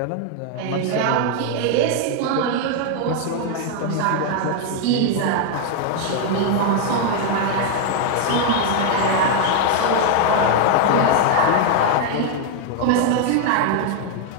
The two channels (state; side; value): different; both; correlation 0.00